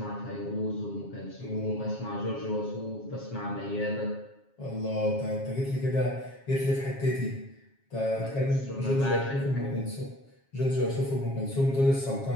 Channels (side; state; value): right; late; 7.3 ms